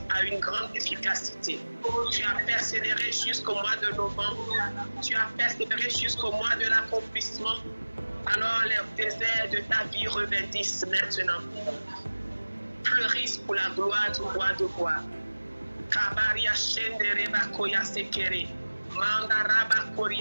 a une grande efficacité. Tu as persévéré jusqu'au mois de novembre. Tu as persévéré jusqu'au mois de l'accomplissement. Alors les déserts de ta vie revêtissent maintenant. Fleurissent pour la gloire du roi de gloire. Kabaria shendere bakoya sekere. Mandaraba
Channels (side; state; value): both; inverted; correlation -1.00